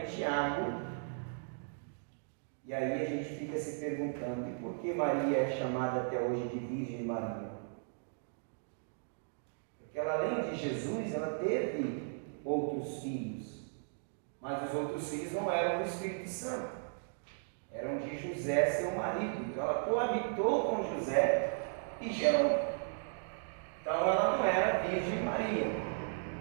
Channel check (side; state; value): left; silent; digital silence